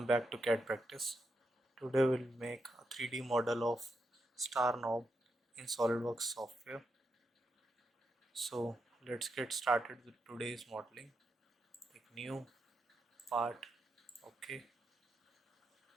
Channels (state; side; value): normal; both; correlation 0.84